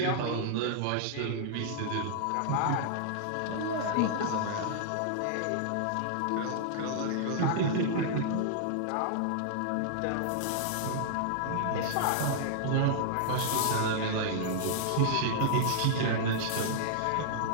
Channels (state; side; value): different; both; correlation -0.01